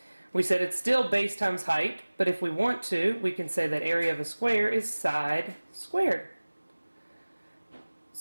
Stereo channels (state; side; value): inverted; both; correlation -1.00